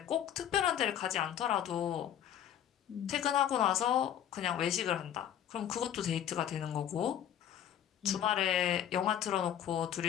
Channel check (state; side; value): quieter; right; 10.2 dB